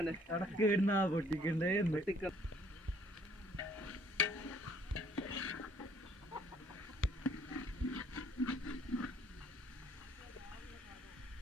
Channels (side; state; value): both; normal; correlation 0.61